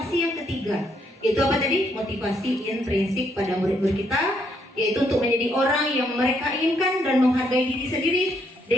yang ketiga. Itu apa tadi? Motivasi intrinsik pada murid-murid kita, yaitu untuk menjadi orang yang mereka inginkan dan menghargai diri sendiri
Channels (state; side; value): normal; both; correlation 0.73